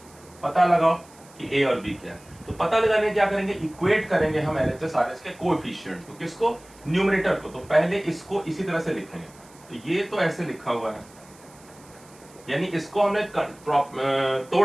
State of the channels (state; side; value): noise; right; hiss, 25 dB below the sound